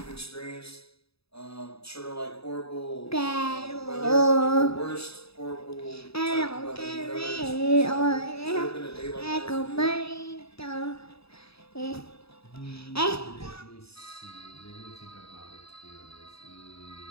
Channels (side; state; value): right; late; 0.78 ms